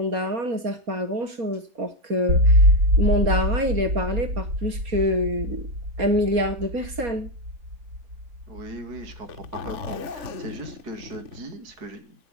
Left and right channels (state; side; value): late; left; 4.2 ms